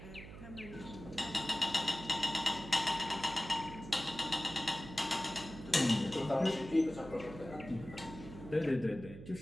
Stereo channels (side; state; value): right; noise; hum, 13 dB below the sound